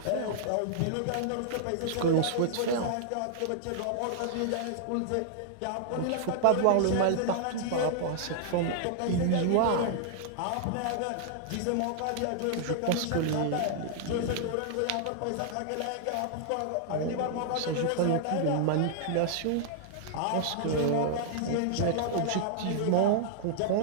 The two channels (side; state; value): both; different; correlation -0.01